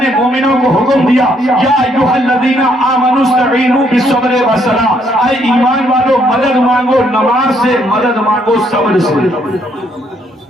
نے مومنوں کو حکم دیا, یا ایھا الذین آمنوا استعینوا بالصبر والصلاۃ. اے ایمان والو مدد مانگو نماز سے, مدد مانگو صبر سے.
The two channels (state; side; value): normal; both; correlation 0.70